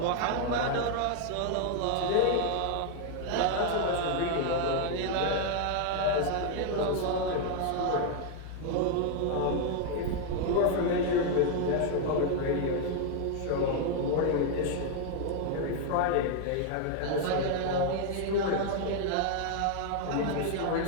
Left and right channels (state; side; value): different; both; correlation 0.00